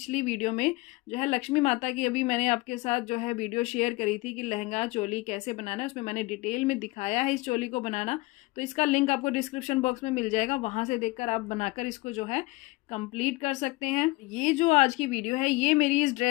वीडियो में जो है लक्ष्मी माता की, अभी मैंने आपके साथ जो है वीडियो शेयर करी थी कि लहंगा चोली कैसे बनाना है, उसमें मैंने डिटेल में दिखाया है इस चोली को बनाना। तो इसका लिंक आपको डिस्क्रिप्शन बॉक्स में मिल जाएगा, वहां से देखकर आप बनाकर इसको जो है कंप्लीट कर सकते हैं। ये जो आज की वीडियो है, ये मेरी इस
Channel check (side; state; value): right; quieter; 22.2 dB